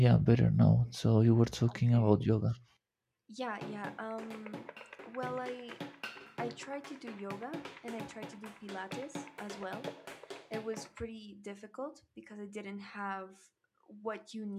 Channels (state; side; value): identical; both; correlation 1.00